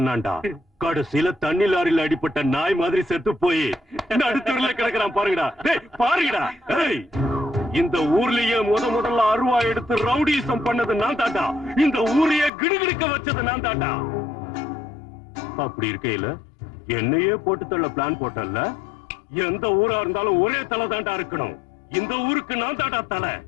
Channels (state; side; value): drops out; right; at 12.5 s